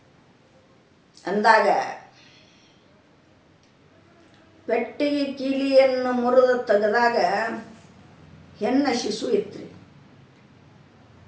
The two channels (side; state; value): both; identical; correlation 1.00